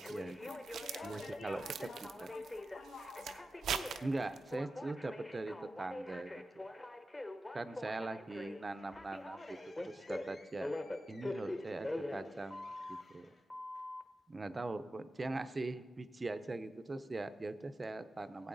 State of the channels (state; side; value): normal; both; correlation 0.92